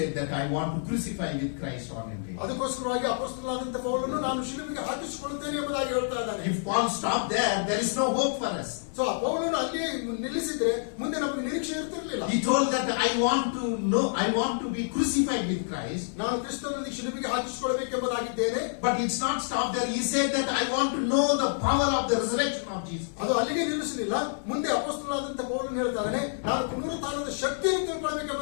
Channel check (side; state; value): right; silent; 59 dB below the other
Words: that I want to crucify with Christ on a day. ಅದಕ್ಕೋಸ್ಕರವಾಗಿ ಅಪೊಸ್ತಲನಾದಂತ ಪೌಲನು ನಾನು ಶಿಲುಬೆಗೆ ಹಾಕಿಸಿಕೊಳ್ಳುತ್ತೇನೆ ಎಂಬುದಾಗಿ ಹೇಳ್ತಾ ಇದ್ದಾನೆ. If Paul stopped there is no hope for us. So ಆ ಪೌಲನು ಅಲ್ಲಿಯೇ ನಿಲ್ಲಿಸಿದ್ರೆ ಮುಂದೆ ನಮಗೆ ನಿರೀಕ್ಷೆ ಇರ್ತಿರ್ಲಿಲ್ಲ. He told that I want to be crucified with Christ. ನಾನು ಕ್ರಿಸ್ತನಲ್ಲಿ ಶಿಲುಬೆಗೆ ಹಾಕಿಸಿಕೊಳ್ಳಬೇಕೆಂಬುದಾಗಿದ್ದೇನೆ. But it's not stopped there. He said that I want to know the power of the resurrection of Jesus. ಅದು ಅಲ್ಲಿಗೆ ನಿಲ್ಲಿಸಲಿಲ್ಲ. ಮುಂದೆ ಅಪೊಸ್ತಲನಾದಂತ ಪೌಲನು ಹೇಳ್ತಾನೆ ನಾನು ಪುನರುತ್ಥಾನದ ಶಕ್ತಿಯನ್ನು